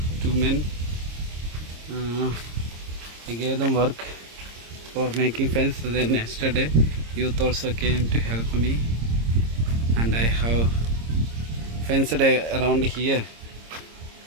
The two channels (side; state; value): left; late; 26 ms